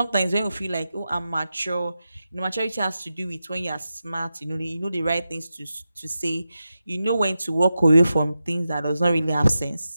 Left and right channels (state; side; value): inverted; both; correlation -0.91